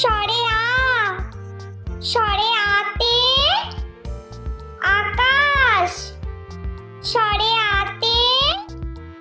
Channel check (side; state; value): both; identical; correlation 1.00